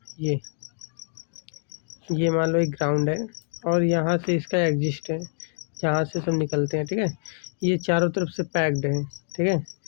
ये मान लो एक ग्राउंड है और यहाँ से इसका एग्जिस्ट है, जहाँ से सब निकलते हैं, ठीक है। ये चारों तरफ से पैक्ड है, ठीक है।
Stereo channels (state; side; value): silent; right; digital silence